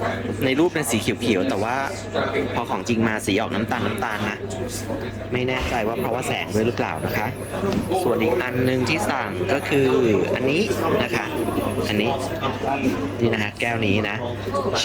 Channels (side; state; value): both; identical; correlation 1.00